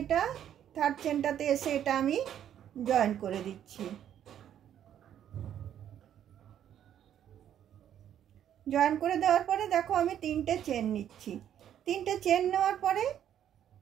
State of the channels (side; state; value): left; quieter; 10.2 dB